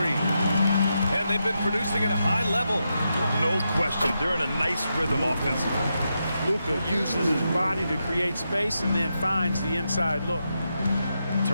3. And they've been producing at a high level. No question. They're in a nice rhythm offensively. Luka uses his body to create space and then finds the inside look.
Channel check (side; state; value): both; inverted; correlation -0.85